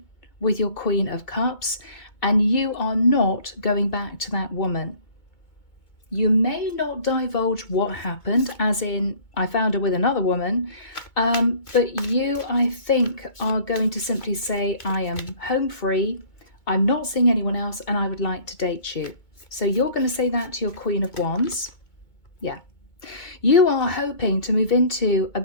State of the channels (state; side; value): late; right; 2.2 ms